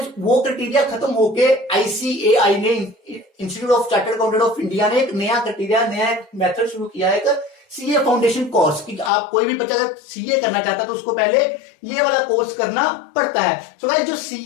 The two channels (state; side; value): drops out; right; at 9.1 s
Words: वो क्राइटेरिया खत्म होके आईसीएआई ने, institute of chartered accountant of India ने एक नया क्राइटेरिया, नया मेथड शुरू किया है, एक सीए फाउंडेशन कोर्स कि आप कोई भी बच्चा अगर सीए करना चाहता है तो उसको पहले ये वाला कोर्स करना पड़ता है। सो गाइस जो